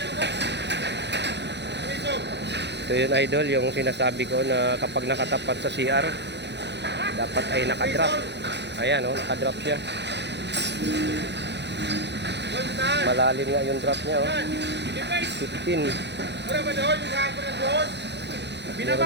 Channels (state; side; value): late; left; 0.50 ms